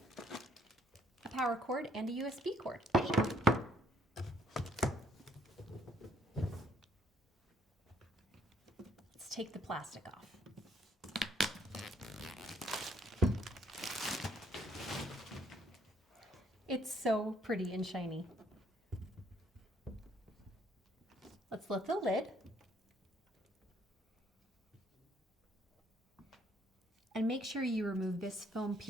a power cord, and a USB cord. Let's take the plastic off. It's so pretty and shiny. Let's lift the lid and make sure you remove this foam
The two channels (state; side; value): normal; both; correlation 0.67